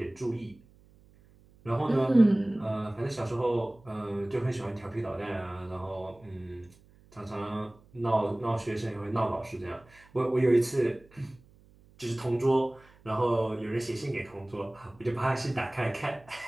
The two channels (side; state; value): right; noise; hum, 27 dB below the sound